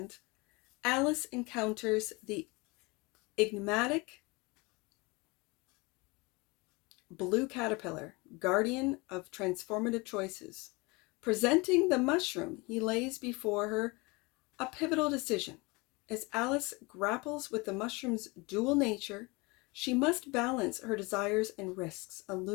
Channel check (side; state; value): right; quieter; 26.0 dB